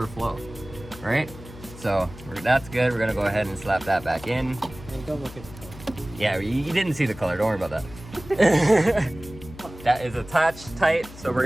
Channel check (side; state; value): left; noise; hum, 17 dB below the sound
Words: All right. So that's good. We're gonna go ahead and slap that back in. Hey, don't look at the color. Yeah, you didn't see the color. Don't worry about that. That is attached tight. So we're